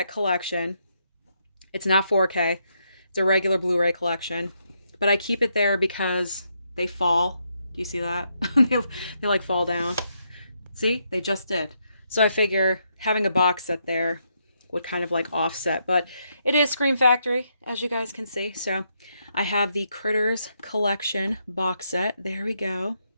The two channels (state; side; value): inverted; both; correlation -0.78